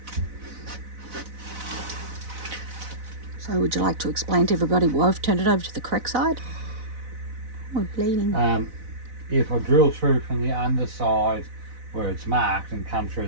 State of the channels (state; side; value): late; left; 4.0 ms